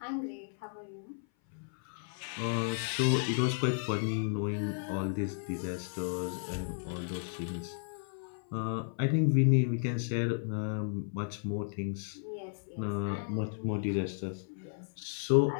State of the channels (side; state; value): right; silent; 55 dB below the other